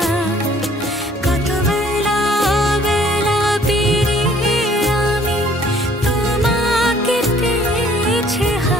কত বেলা বেলা পেরিয়ে আমি তোমাকে পেয়েছি,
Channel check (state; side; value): normal; both; correlation 0.58